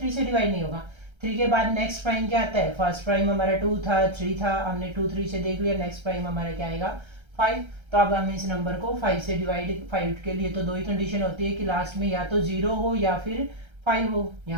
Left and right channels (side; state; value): left; late; 1.3 ms